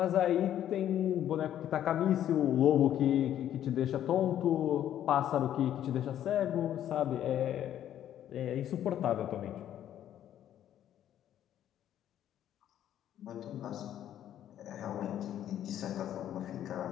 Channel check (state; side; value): quieter; right; 11.1 dB